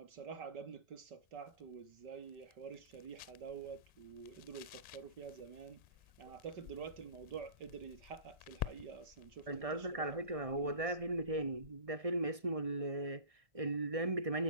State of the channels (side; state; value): left; late; 1.6 ms